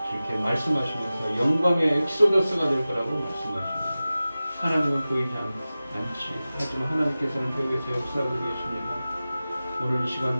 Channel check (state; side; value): inverted; both; correlation -0.96